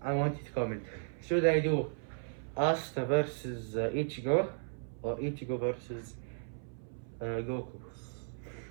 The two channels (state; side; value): silent; left; 54 dB below the other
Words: I want you to comment. Should I do Asta versus Ichigo, or Ichigo versus Goku.